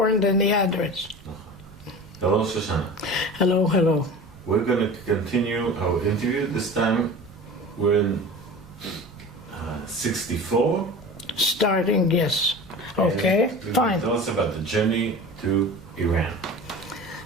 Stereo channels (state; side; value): noise; right; rumble, 24 dB below the sound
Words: than the address. Hello, Shoshana. Hello, hello. We're going to continue our interview. This time we're in 64. Starting, yes. Okay, fine. Tell us about the journey to Iran.